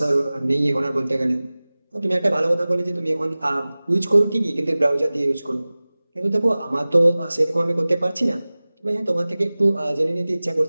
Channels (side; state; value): both; inverted; correlation -0.98